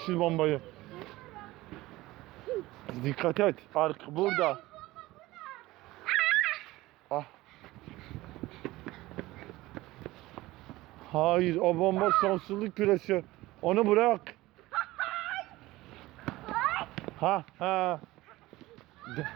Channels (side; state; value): left; quieter; 18.5 dB